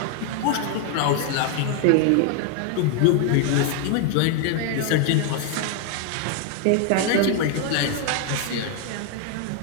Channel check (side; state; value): both; different; correlation 0.00